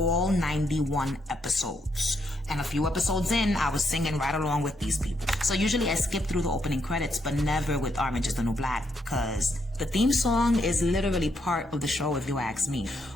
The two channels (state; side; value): normal; both; correlation 0.77